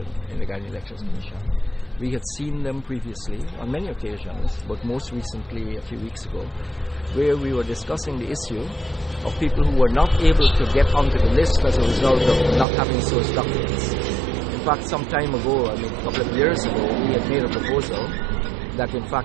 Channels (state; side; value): drops out; left; at 12.7 s